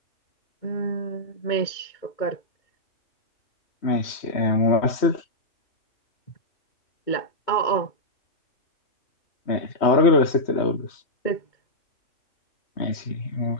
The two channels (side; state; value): right; late; 3.1 ms